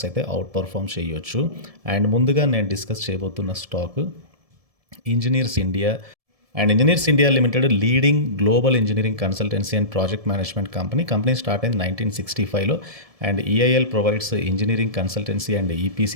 అయితే అవుట్ పర్ఫామ్ చేయొచ్చు. అండ్ ముందుగా నేను డిస్కస్ చేయబోతున్న stock engineers India. And engineers India limited leading global engineering consultancy and project management company start అయింది 1965లో. And EIL provides engineering consultancy and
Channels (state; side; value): late; left; 1.7 ms